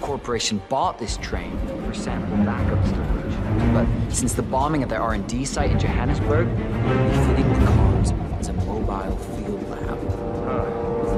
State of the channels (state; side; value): identical; both; correlation 1.00